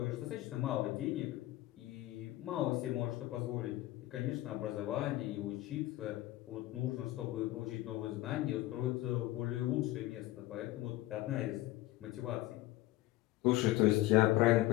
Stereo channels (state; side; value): quieter; right; 17.0 dB